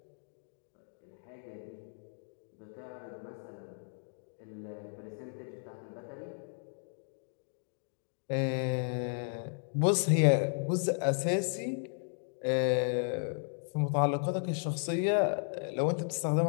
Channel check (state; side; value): silent; right; digital silence